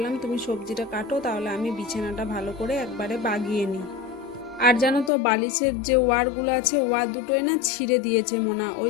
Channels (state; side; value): drops out; right; at 5.1 s